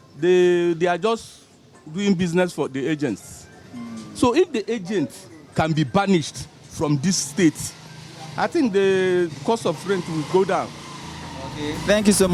they are just doing business for the agents. So if the agent can be banished from this state, I think the cost of rent will go down. Okay. Thank you so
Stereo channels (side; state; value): both; identical; correlation 1.00